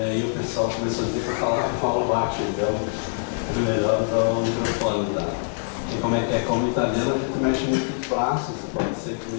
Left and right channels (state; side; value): silent; right; digital silence